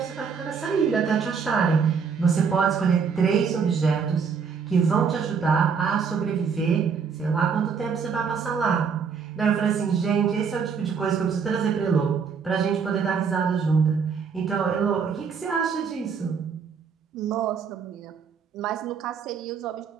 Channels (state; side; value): quieter; left; 6.1 dB